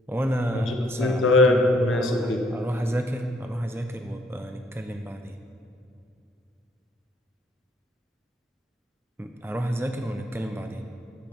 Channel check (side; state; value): both; normal; correlation 0.66